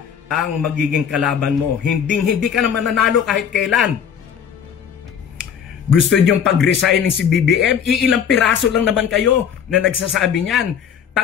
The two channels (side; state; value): right; quieter; 7.9 dB